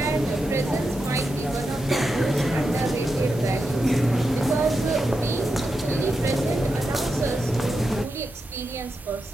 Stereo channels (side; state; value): both; normal; correlation 0.88